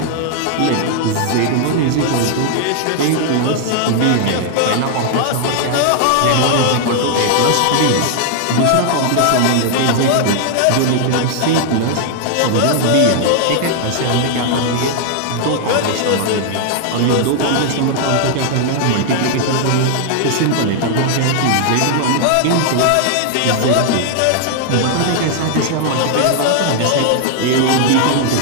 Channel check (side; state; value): both; different; correlation 0.00